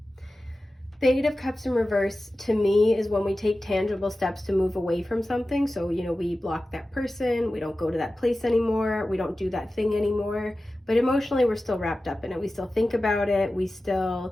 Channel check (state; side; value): normal; both; correlation 0.95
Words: The Eight of Cups in reverse, to me, is when we take tangible steps to move away from something. So, we block that person, we don't go to that place anymore, we don't do that thing anymore. But emotionally, we're still wrapped up in it. We still think about it, we